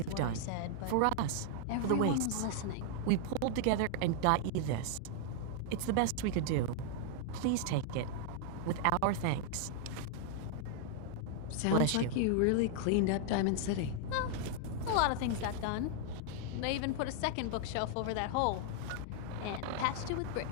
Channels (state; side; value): different; both; correlation 0.00